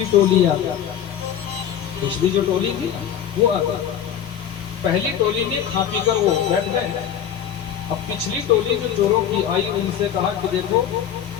टोली आ गई। पिछली जो टोली थी वो आ गई, पहली टोली ने खा पी कर वो बैठ गए। अब पिछली टोली जो चोरों की आई, उनसे कहा कि देखो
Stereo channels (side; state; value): right; quieter; 9.5 dB